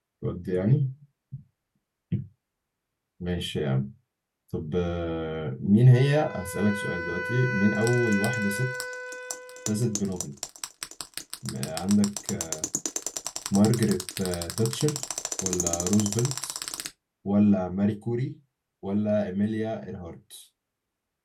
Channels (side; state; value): both; identical; correlation 1.00